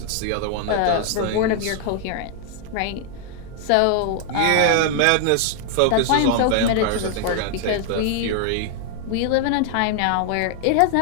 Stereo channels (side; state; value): both; different; correlation 0.00